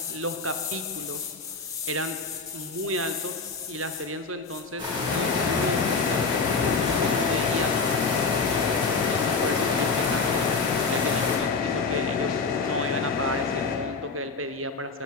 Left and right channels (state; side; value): quieter; right; 4.3 dB